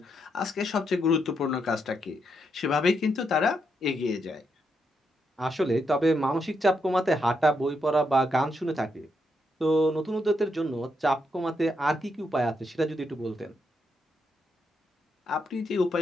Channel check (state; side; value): normal; both; correlation 0.80